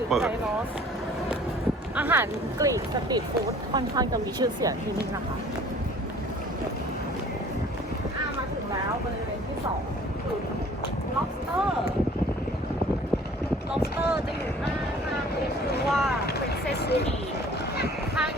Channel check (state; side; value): normal; both; correlation 0.51